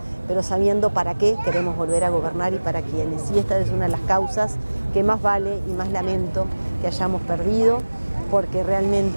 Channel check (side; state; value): both; inverted; correlation -1.00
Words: pero sabiendo para qué queremos volver a gobernar y para quiénes. Y esta es una de las causas que más vale y más lamento que hayamos perdido, porque